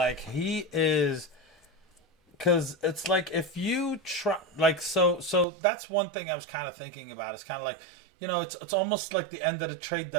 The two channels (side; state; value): left; drops out; at 5.5 s